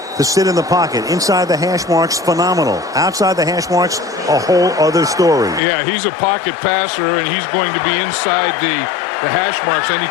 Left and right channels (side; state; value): right; drops out; at 5.6 s